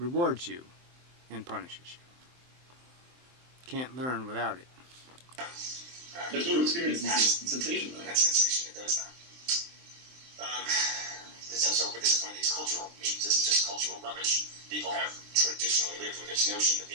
you and punishes you. Can't learn without it. There's no experience in sensation, though. And that sensation, it does that. But this is one of these cultural memes. This is just cultural rubbish. People have traditionally lived with this notion that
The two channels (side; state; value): left; late; 23 ms